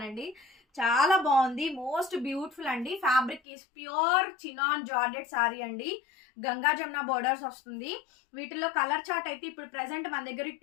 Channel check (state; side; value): drops out; right; at 3.4 s